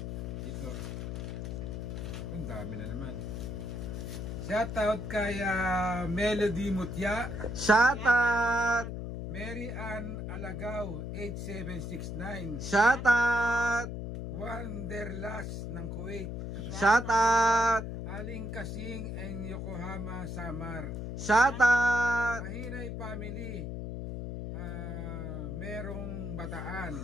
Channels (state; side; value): noise; left; hum, 5 dB below the sound